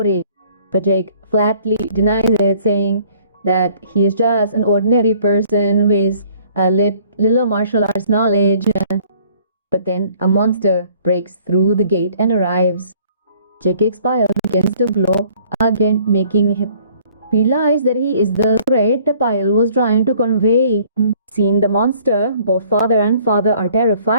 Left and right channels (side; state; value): both; inverted; correlation -0.57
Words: But Jake flatly denies it, saying that he is just an ordinary person with a little martial arts knowledge. But then a monster breaks through the gate and arrives. Jake's pile begins to glow again, making him realize that he is the threat the pile was trying to convey. Seeing the monster, both father and father are